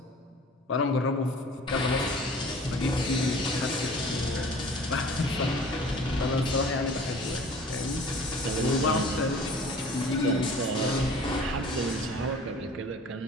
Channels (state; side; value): normal; both; correlation 0.46